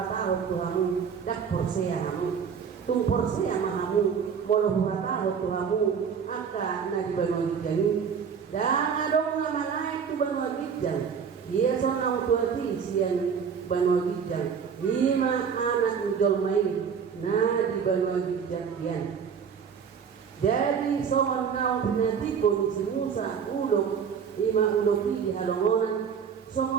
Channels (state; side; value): quieter; left; 6.8 dB